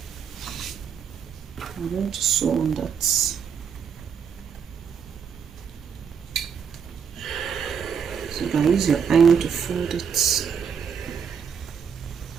I'm going to sew on that. So you can use your iron to fold it.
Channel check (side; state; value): left; quieter; 7.0 dB